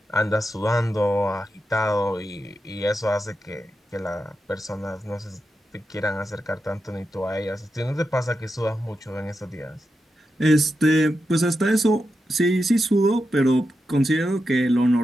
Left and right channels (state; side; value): normal; both; correlation 0.88